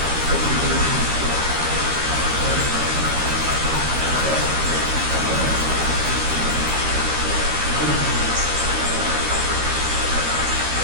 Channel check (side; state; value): left; late; 13 ms